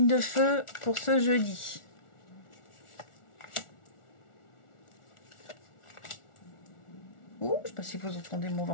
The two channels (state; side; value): late; right; 1.4 ms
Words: de feu pour ce jeudi. Ouh, je ne sais pas si vous entendez mon